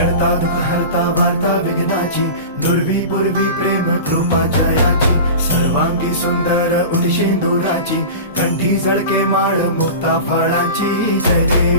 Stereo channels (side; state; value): both; inverted; correlation -0.32